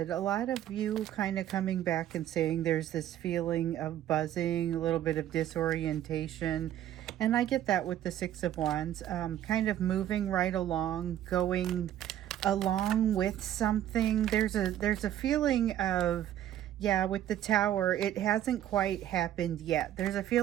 a lot of you kind of coming back and saying there's this feeling of buzzing, a little bit of disorientation. And I get that with the Six of Wands, kind of moving right along, going along with something. There's a feeling of, yeah, with the Tower, it hasn't quite happened yet. There's a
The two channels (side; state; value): left; quieter; 11.8 dB